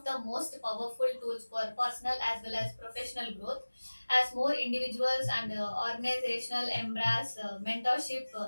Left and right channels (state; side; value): inverted; both; correlation -1.00